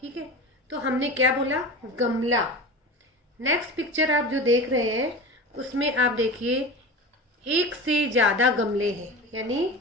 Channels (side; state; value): both; normal; correlation 0.31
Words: ठीक है, तो हमने क्या बोला? गमला। नेक्स्ट पिक्चर आप जो देख रहे हैं उसमें आप देखिए एक से ज़्यादा गमले हैं, यानी